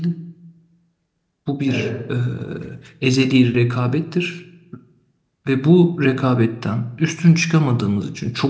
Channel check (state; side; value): identical; both; correlation 1.00